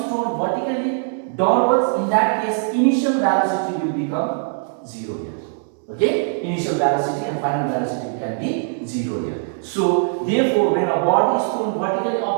thrown vertically downwards, in that case, initial velocity will become 0 here. Okay? Initial velocity and final velocity can be 0 here. So, therefore, when a body is thrown vertically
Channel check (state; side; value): silent; left; digital silence